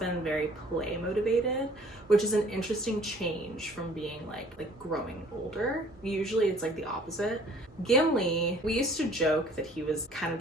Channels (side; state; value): both; normal; correlation 0.55